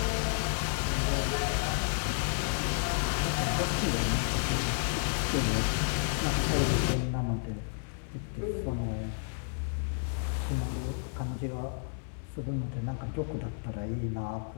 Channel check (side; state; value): right; silent; 57 dB below the other